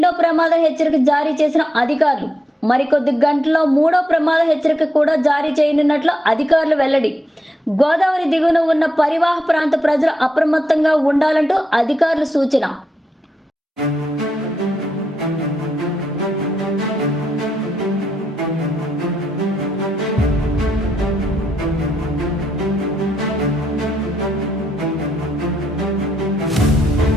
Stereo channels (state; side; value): normal; both; correlation 0.82